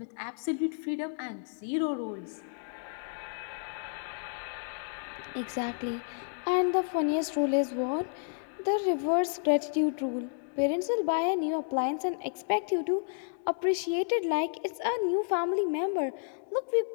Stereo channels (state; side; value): silent; right; digital silence